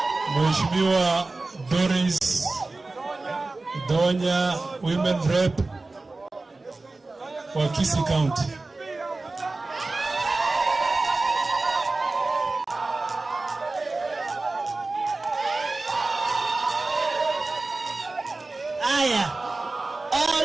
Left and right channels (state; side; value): quieter; left; 3.3 dB